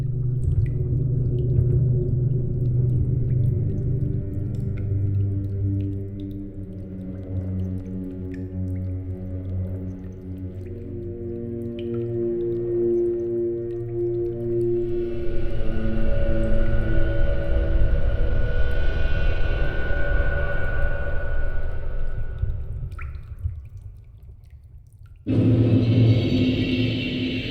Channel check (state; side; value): identical; both; correlation 1.00